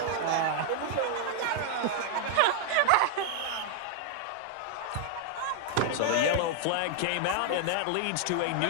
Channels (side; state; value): both; different; correlation 0.00